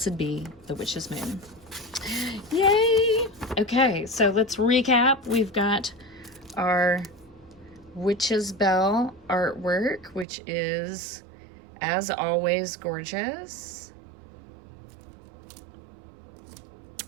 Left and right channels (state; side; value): drops out; left; at 10.2 s